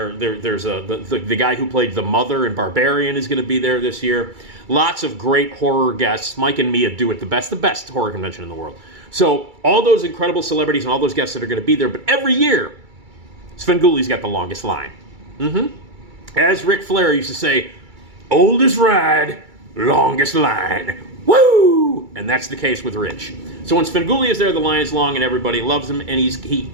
the guy who played the mother in Barbarian is going to be there this year. Lots of great horror guests. Mike and Mia do it the best horror convention in the world. So all those incredible celebrities and all those guests that are going to be there, but every year, Svengoolie's got the longest line. As Ric Flair used to say, oldest ride, longest line. Woo! And that's the case with Rich. So when Svengoolie is there, the line is long and everybody loves him, and he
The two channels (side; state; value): left; late; 2.3 ms